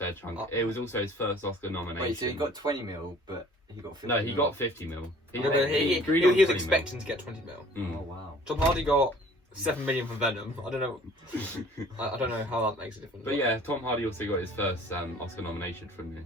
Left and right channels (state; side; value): normal; both; correlation 0.52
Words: chunk. It was also his first Oscar nomination. Wait, so he got 20 mil, but he got 50 No, he mil. got 50 mil. He agreed on was 20 expecting to get 20 mil. mil. Oh wow. Tom Hardy got 7 million for Venom. I don't know. I don't know how that makes a difference. But yeah, Tom Hardy also got his first Oscar nomination from